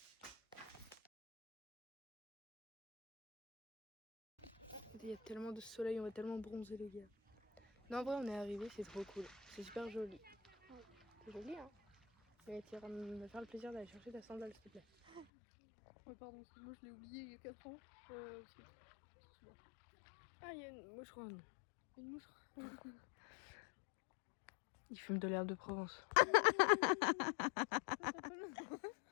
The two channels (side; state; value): right; drops out; at 15.2 s